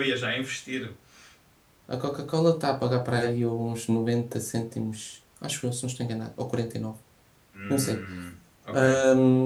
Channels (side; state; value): both; identical; correlation 1.00